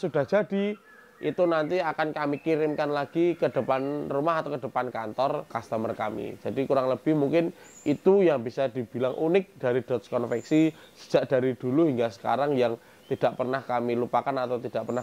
jadi, itu nanti akan kami kirimkan lagi ke depan rumah atau ke depan kantor customer kami. Jadi kurang lebih mungkin itu yang bisa dibilang unik dari Dodge Konveksi sejak dari dulu hingga sekarang, yang tidak pernah kami lupakan atau tidak pernah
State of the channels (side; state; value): both; identical; correlation 1.00